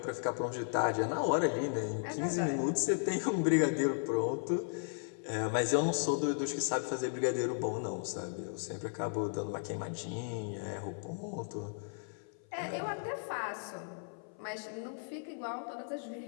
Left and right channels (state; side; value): silent; right; 54 dB below the other